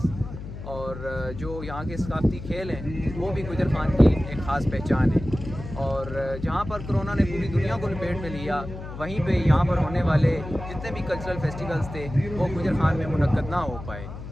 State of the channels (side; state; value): left; noise; hum, 10 dB below the sound